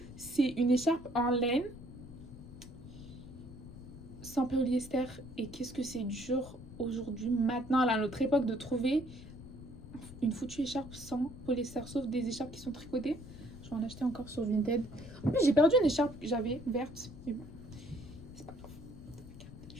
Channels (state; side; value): noise; left; rumble, 15 dB below the sound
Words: C'est une écharpe en laine. Sans polyester. Et qu'est-ce que c'est dur aujourd'hui, maintenant, à notre époque, de trouver une foutue écharpe sans polyester, sauf des écharpes qui sont tricotées. Je vais en acheter encore sur Vinted. En plus, j'ai perdu une écharpe que j'avais verte, mais bon, c'est pas grave. Regardez